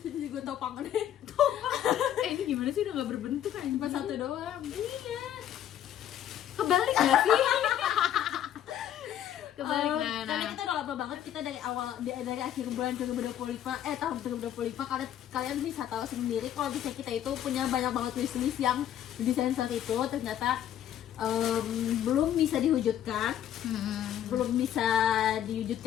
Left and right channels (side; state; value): right; quieter; 10.9 dB